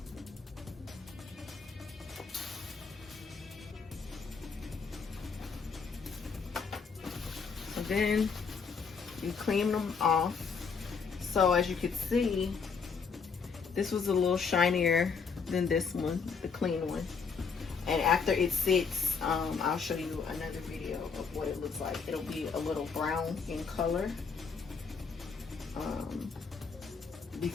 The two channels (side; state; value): right; quieter; 5.5 dB